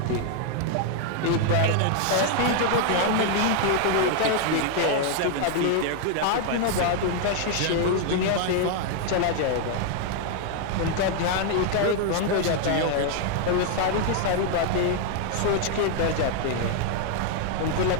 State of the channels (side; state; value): both; different; correlation 0.00